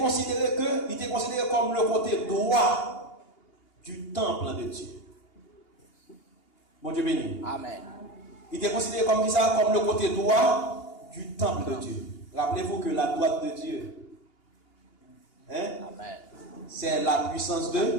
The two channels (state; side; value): late; right; 2.8 ms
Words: comme le côté droit du temple de Dieu. Bon Dieu béni. Amen. Il était considéré comme ça, comme le côté droit du temple de Dieu. Rappelez-vous que la droite de Dieu, c'est la puissance de